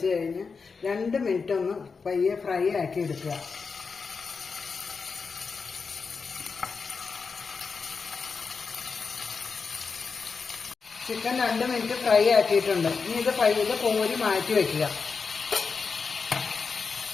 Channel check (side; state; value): right; quieter; 5.1 dB